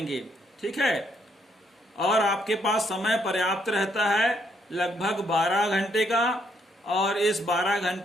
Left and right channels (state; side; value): normal; both; correlation 0.72